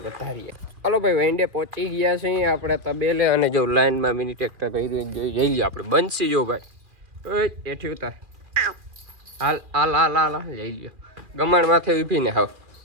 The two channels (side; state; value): left; late; 2.4 ms